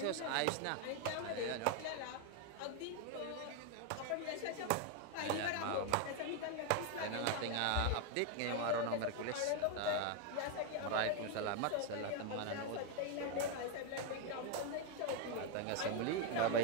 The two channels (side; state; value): both; different; correlation 0.01